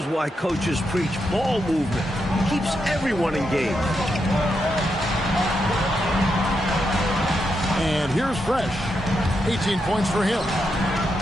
why coaches preach ball movement. It keeps everyone engaged. And here's Fresh. 18 points for him.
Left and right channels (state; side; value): normal; both; correlation 0.83